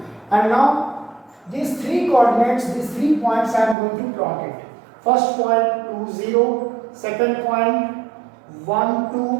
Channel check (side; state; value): left; drops out; at 3.8 s